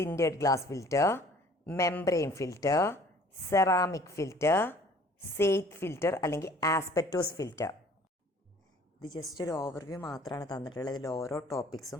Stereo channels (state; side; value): normal; both; correlation 0.52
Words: glass filter, membrane filter, ceramic filter, Seitz filter അല്ലെങ്കിൽ ആസ്പെറ്റോസ് ഫിൽറ്റർ. ഇത് ജസ്റ്റ് ഒരു ഓവർവ്യൂ മാത്രമാണ് തന്നിട്ടുള്ളത്. ഇതിൽ ഓരോ